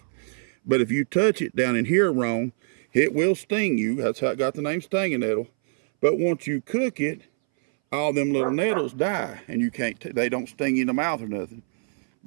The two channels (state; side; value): silent; left; 61 dB below the other